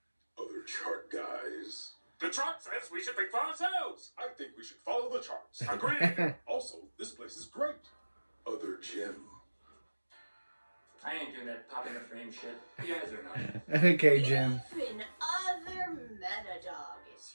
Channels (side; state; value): both; inverted; correlation -1.00